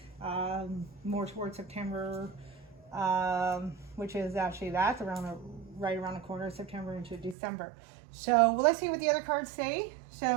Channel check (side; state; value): left; drops out; at 7.4 s